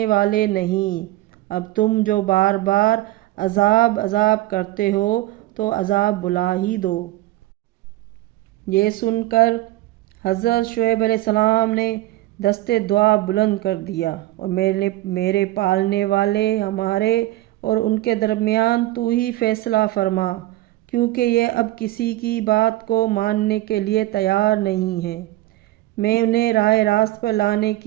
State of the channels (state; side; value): quieter; left; 16.7 dB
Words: والے نہیں۔ اب تم جو بار بار عذاب کرتے ہو تو عذاب بلا ہی دو۔ یہ سن کر حضرت شعیب علیہ السلام نے دستے دعا بلند کر دیا، اور میرے پالنے والے، ہمارے اور ان کے درمیان تو ہی فیصلہ فرما، کیونکہ یہ اب کسی کی بات کو ماننے کے لیے تیار نہیں ہے۔ میں انہیں راہ راست پر لانے